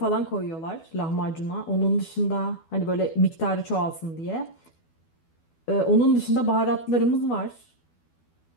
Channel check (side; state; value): right; late; 12 ms